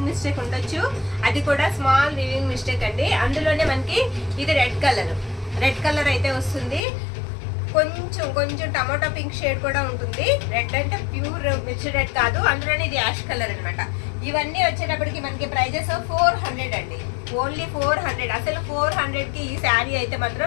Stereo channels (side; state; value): right; drops out; at 6.8 s